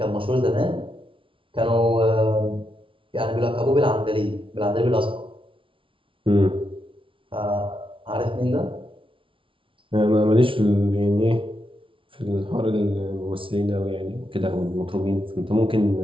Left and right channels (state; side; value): late; left; 0.25 ms